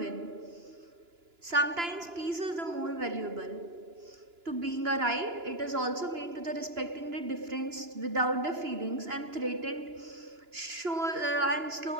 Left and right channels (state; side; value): late; left; 2.9 ms